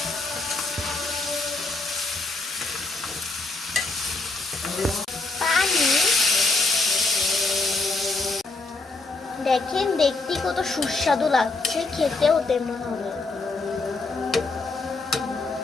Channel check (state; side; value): quieter; right; 3.5 dB